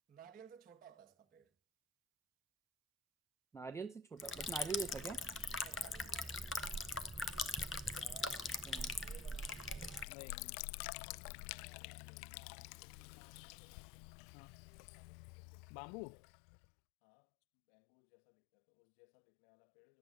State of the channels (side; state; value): right; drops out; at 10.1 s